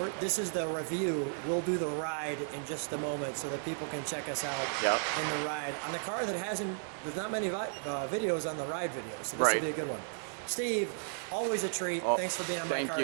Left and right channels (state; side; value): silent; left; digital silence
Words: this is the review. We'll do the ride in just a moment so that people can check us out in the ride. On the car that there's not many videos on the ride videos, so this will be a good one. Steve, always a treat. Thanks for being on my car